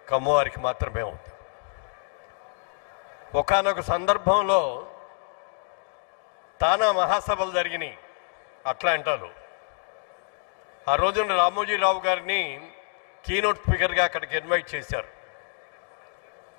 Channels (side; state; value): right; silent; 60 dB below the other